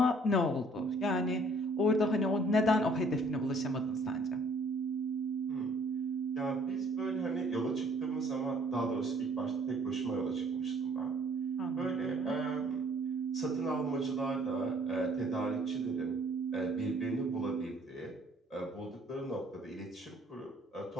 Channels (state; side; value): normal; both; correlation 0.59